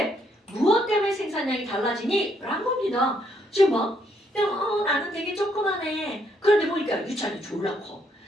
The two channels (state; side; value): normal; both; correlation 0.72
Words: 무엇 때문에 생산량이 달라지니? 라는 겁니다. 지금 막 그냥 나는 되게 조그만해. 그런데 보니까 유찬이 졸라 커.